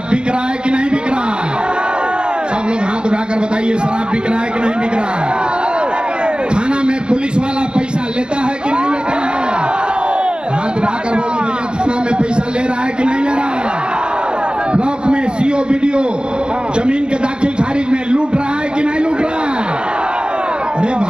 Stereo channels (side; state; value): left; late; 0.051 ms